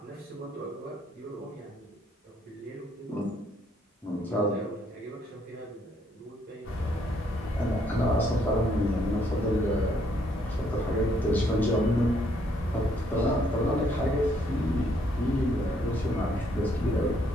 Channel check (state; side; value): normal; both; correlation 0.69